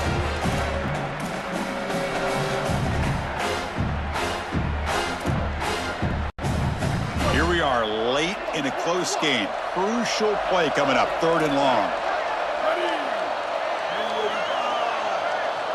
Close game. Crucial play coming up. 3rd and long.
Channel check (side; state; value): both; identical; correlation 1.00